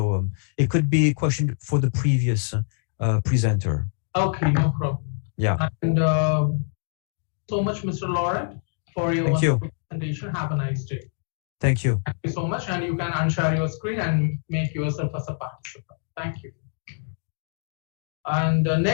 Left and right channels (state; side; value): silent; right; digital silence